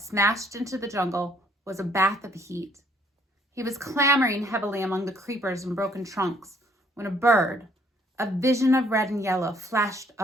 into the jungle, was a bath of heat. He was clambering heavily among the creepers and broken trunks when a bird, a vision of red and yellow, flashed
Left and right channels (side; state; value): both; normal; correlation 0.64